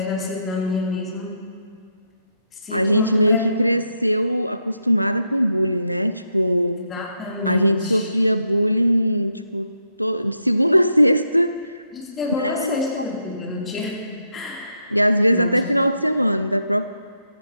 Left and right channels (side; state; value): both; inverted; correlation -0.80